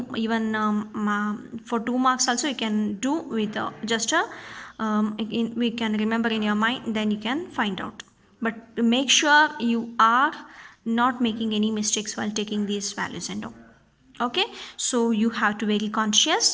even for 2 marks also you can do with just a we can remember in your mind, then you can find out. But make sure you are not making any mistakes while taking these values and all. Okay, so you have to be very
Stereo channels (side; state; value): both; identical; correlation 1.00